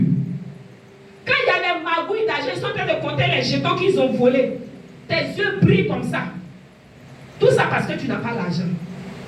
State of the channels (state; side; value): identical; both; correlation 1.00